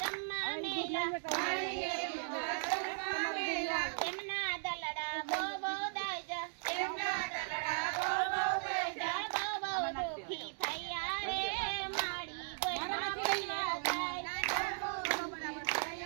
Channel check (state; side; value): silent; left; digital silence